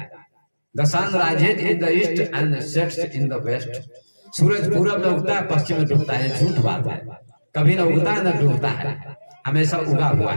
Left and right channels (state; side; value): inverted; both; correlation -1.00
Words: The sun rises in the east and sets in the west. सूरज पूरब में उगता है, पश्चिम में डूबता है, झूठ बात है। कभी न उगता है न डूबता है, हमेशा उगा हुआ